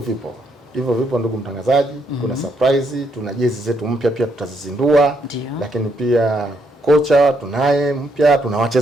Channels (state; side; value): normal; both; correlation 0.75